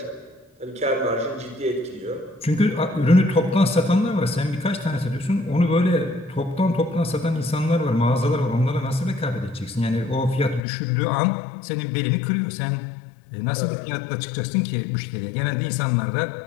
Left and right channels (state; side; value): drops out; right; at 10.6 s